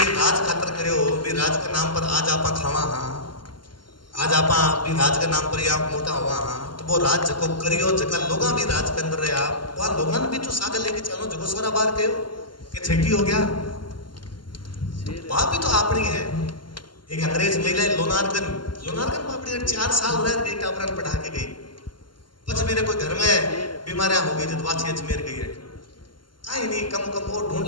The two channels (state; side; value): late; right; 0.72 ms